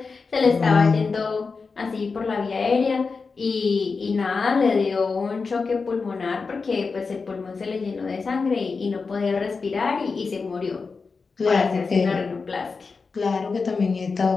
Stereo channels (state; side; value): quieter; right; 4.6 dB